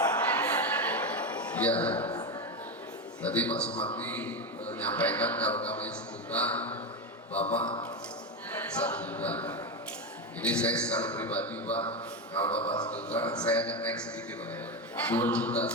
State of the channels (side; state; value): both; normal; correlation 0.14